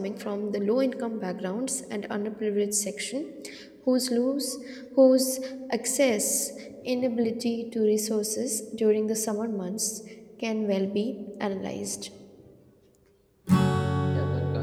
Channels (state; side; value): identical; both; correlation 1.00